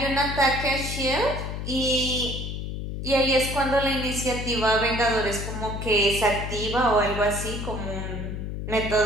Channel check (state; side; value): noise; left; hum, 5 dB below the sound